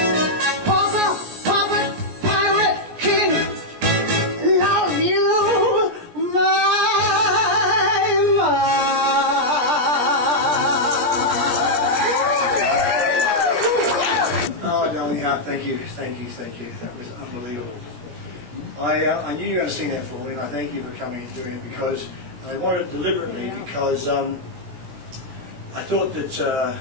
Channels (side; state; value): left; late; 17 ms